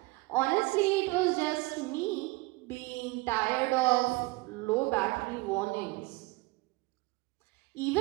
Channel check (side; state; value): left; quieter; 23.3 dB